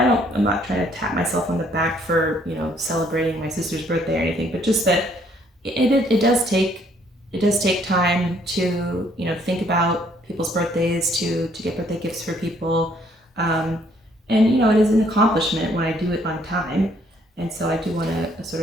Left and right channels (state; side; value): normal; both; correlation 0.65